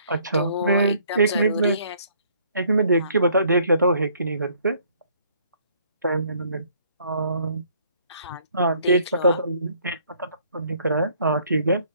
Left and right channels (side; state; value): both; inverted; correlation -0.62